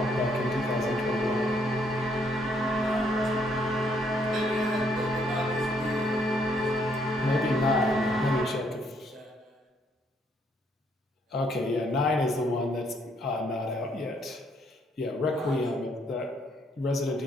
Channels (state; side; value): normal; both; correlation 0.70